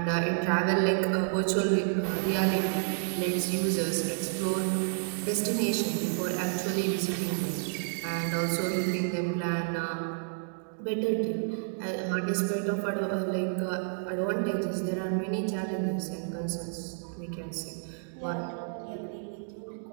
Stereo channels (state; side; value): silent; left; digital silence